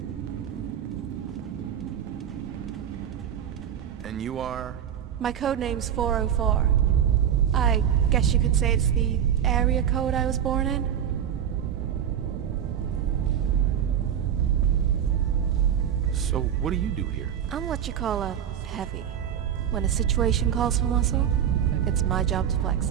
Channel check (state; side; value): quieter; left; 9.3 dB